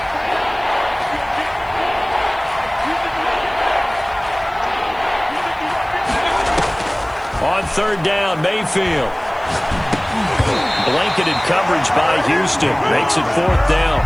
third down, Mayfield. Blanketed coverage by Houston. Makes it fourth down.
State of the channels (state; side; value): noise; right; hiss, 29 dB below the sound